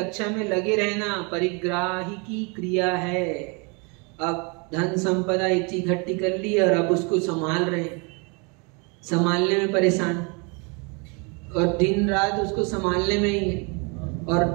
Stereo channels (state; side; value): quieter; left; 32.1 dB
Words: में लगे रहना परिग्राही की क्रिया है। अब धन संपदा इतनी इकट्ठी कर ली और अब उसको संभाल रहे हैं, संभालने में परेशान, और दिन रात उसको संभालने में ही है।